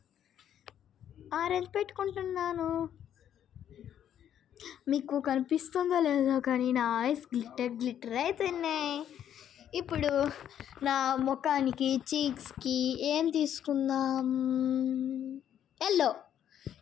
ఆరెంజ్ పెట్టుకుంటున్నాను. మీకు కనిపిస్తుందో లేదో కానీ నా ఐస్ గ్లిటర్ అవుతున్నాయి. ఇప్పుడు నా ముఖానికి చీక్స్కి ఏం తీసుకుందాం?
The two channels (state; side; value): quieter; right; 10.0 dB